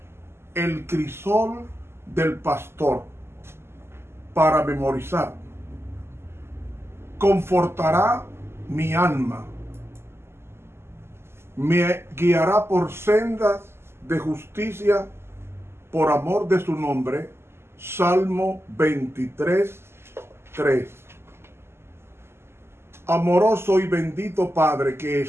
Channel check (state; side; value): late; left; 0.12 ms